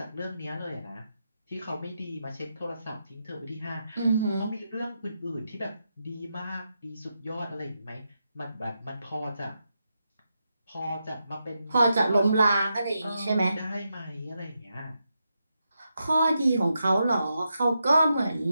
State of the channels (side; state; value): both; inverted; correlation -0.85